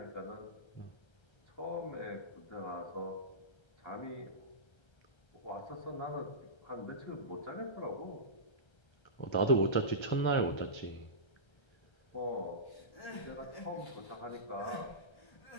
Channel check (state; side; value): late; right; 1.3 ms